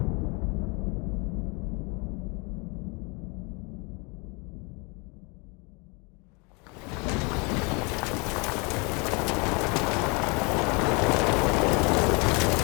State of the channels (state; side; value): quieter; right; 30.7 dB